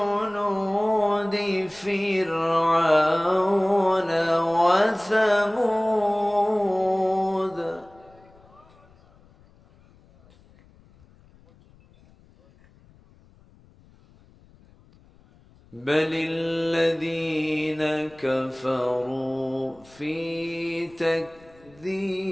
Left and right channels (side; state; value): left; noise; rumble, 28 dB below the sound